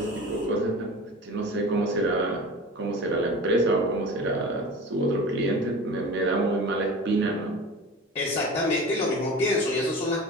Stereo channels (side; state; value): both; normal; correlation 0.35